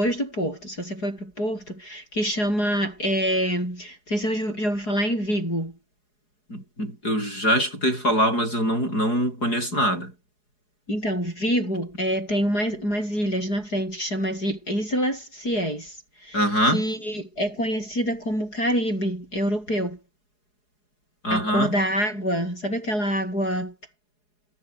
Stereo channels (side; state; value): right; late; 4.8 ms